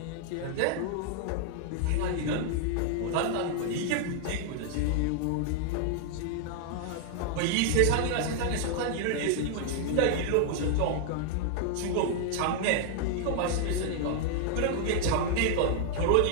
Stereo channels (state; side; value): different; both; correlation 0.00